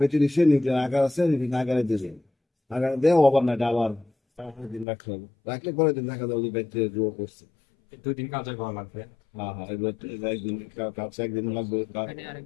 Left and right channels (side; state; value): right; drops out; at 4.9 s